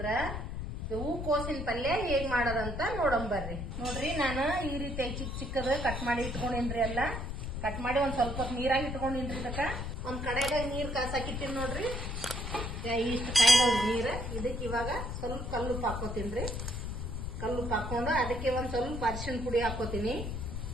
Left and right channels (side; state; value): left; noise; rumble, 5 dB below the sound